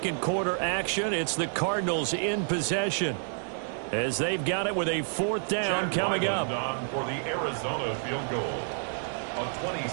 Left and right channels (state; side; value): silent; left; digital silence